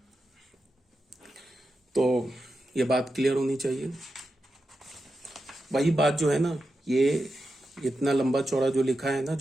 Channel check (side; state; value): both; normal; correlation 0.89